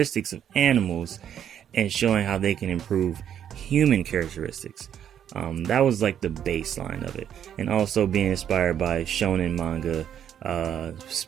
of animals and showing how they can improve human characteristics. That was like the baseline of it, and also being inspired by shonen manga,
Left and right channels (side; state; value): left; quieter; 9.5 dB